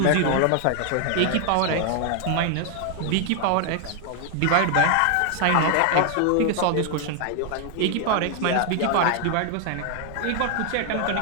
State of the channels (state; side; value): different; both; correlation 0.00